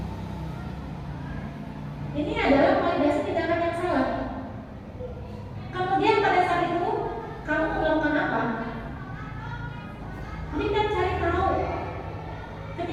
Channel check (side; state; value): both; identical; correlation 1.00